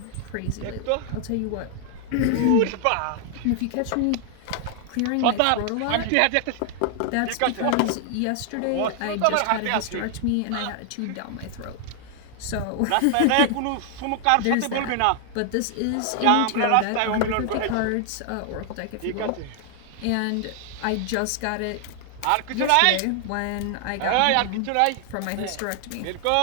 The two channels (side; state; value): both; different; correlation 0.00